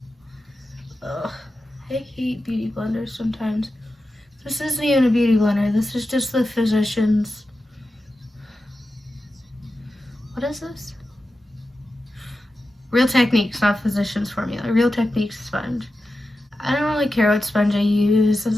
Ugh, I hate beauty blenders sometimes. This isn't even a beauty blender. This is just the Physicians. What is this? Real Techniques, not Physicians formula. Real Techniques sponge. I don't really care what sponge I use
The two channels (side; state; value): both; normal; correlation 0.91